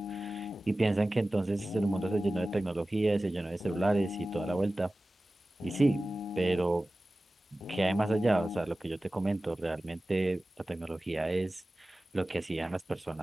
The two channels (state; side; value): normal; both; correlation 0.96